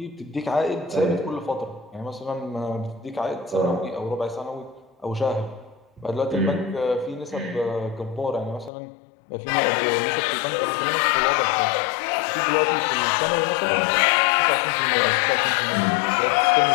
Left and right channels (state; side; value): drops out; right; at 8.7 s